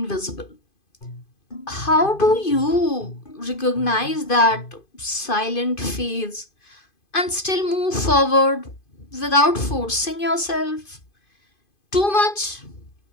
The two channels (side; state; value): right; late; 2.5 ms